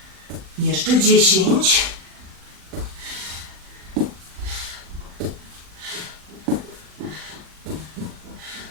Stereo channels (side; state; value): left; late; 40 ms